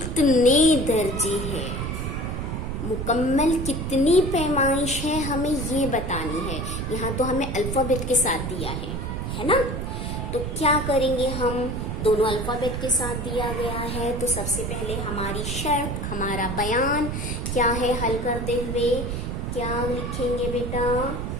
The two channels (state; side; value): noise; right; rumble, 3 dB below the sound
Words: दर्जे हैं, मुकम्मल कितनी पैमाइश है, हमें ये बतानी है। यहाँ तो हमें अल्फ़ाबेट के साथ दिया है ना। तो क्या करेंगे हम? दोनों अल्फ़ाबेट के साथ दिया गया है, तो सबसे पहले हमारी शर्त, हमारा बयान क्या है हल करते हुए? क्या लिखेंगे बेटा